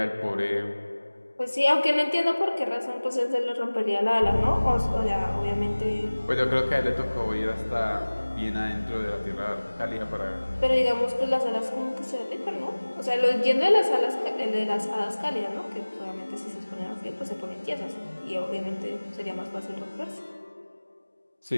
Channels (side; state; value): both; inverted; correlation -1.00